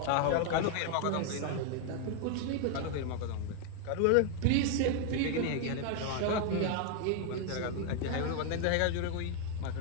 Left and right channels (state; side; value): different; both; correlation 0.00